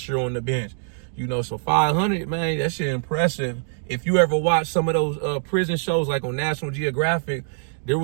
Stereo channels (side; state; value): left; silent; digital silence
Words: year on the bench, you know, so 500, man, that shit impressive. If you ever watch some of those prison shows like on National Geographic, there